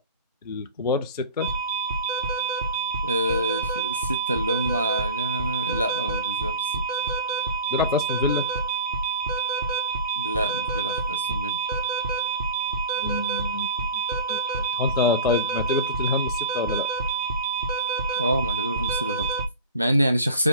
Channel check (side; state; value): both; inverted; correlation -0.35